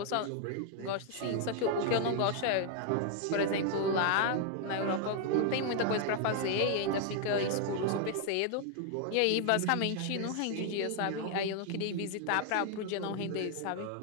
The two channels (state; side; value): different; both; correlation 0.00